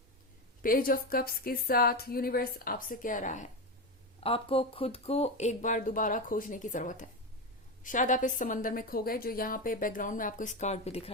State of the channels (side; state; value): both; normal; correlation 0.15